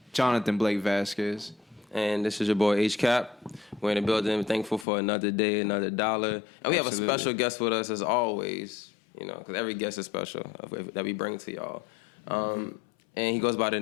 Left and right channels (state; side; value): drops out; right; at 4.9 s